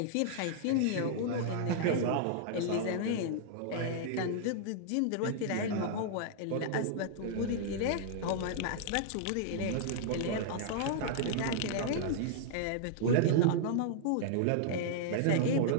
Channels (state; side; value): different; both; correlation -0.01